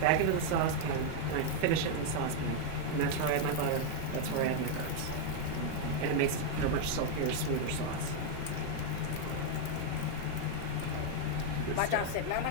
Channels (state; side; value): different; both; correlation 0.00